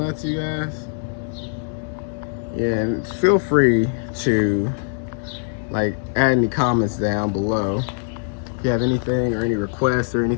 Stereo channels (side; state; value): right; silent; 59 dB below the other